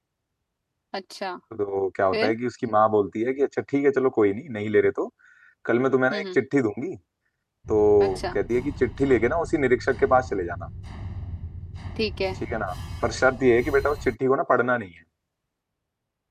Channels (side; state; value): both; identical; correlation 1.00